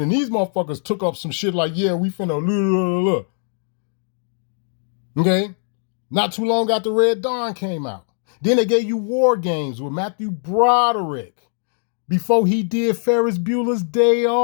and these motherfuckers took up some shit like, yeah, we finna Okay? Not too long after Red Dawn came out. Then they gave you War Games with Matthew Broderick before he did Ferris Bueller's Day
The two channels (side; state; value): right; silent; digital silence